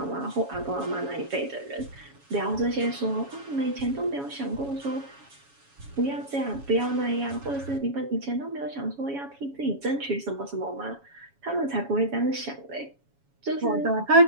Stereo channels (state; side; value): late; left; 7.2 ms